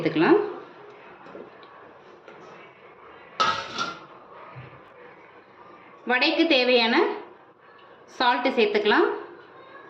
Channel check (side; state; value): both; identical; correlation 1.00